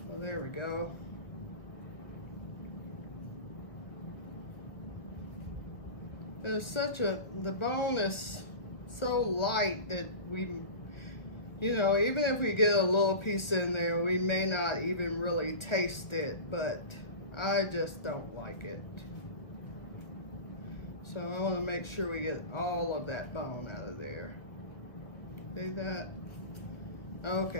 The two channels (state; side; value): late; right; 1.1 ms